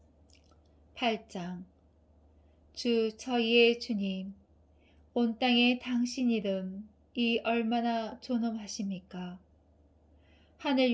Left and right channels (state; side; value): identical; both; correlation 1.00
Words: 8장. 주 저희의 주님, 온 땅에 당신 이름이 얼마나 존엄하십니까?